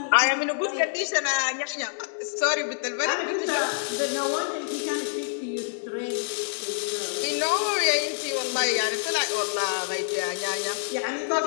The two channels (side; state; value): right; silent; digital silence